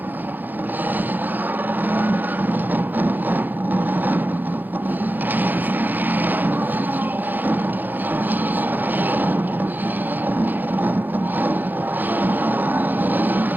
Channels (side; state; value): left; late; 0.087 ms